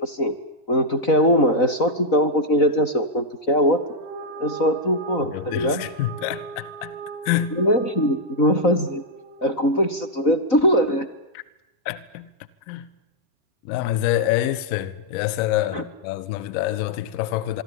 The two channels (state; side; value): late; right; 4.0 ms